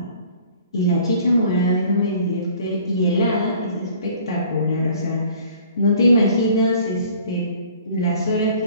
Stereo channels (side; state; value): both; inverted; correlation -0.52